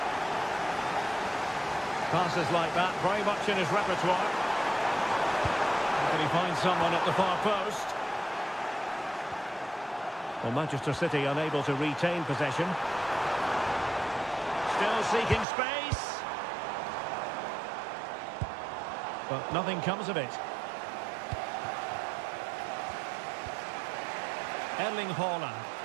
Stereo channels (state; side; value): drops out; left; at 15.5 s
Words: Passes like that, very much in his repertoire. Can he find someone at the far post? Well, Manchester City unable to retain possession. Still seeking space. But nothing comes of it. Erling Haaland.